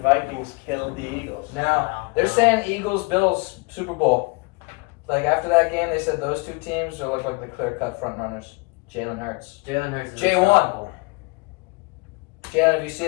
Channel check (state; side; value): quieter; right; 28.9 dB